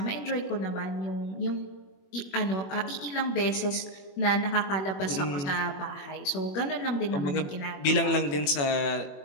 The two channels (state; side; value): late; right; 21 ms